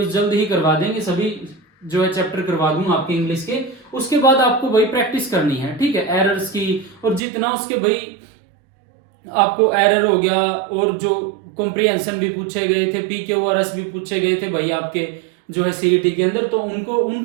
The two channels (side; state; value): left; drops out; at 7.2 s